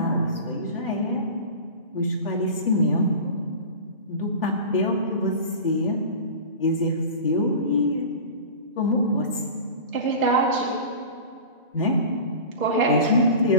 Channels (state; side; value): inverted; both; correlation -0.34